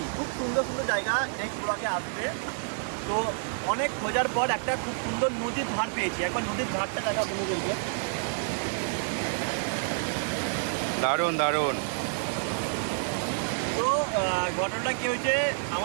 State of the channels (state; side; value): silent; left; digital silence